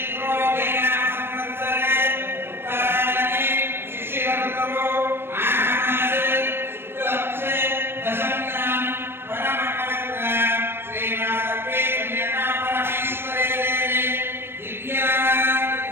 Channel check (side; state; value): left; late; 0.11 ms